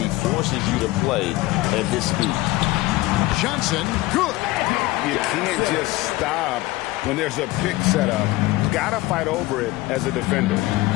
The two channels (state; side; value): quieter; right; 19.0 dB